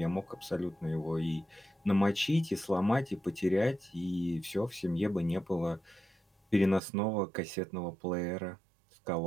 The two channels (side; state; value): left; drops out; at 6.8 s